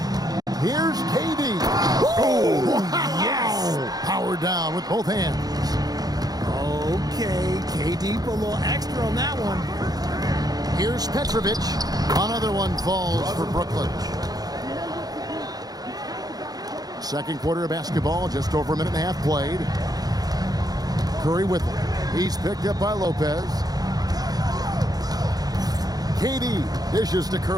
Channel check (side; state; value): left; late; 0.19 ms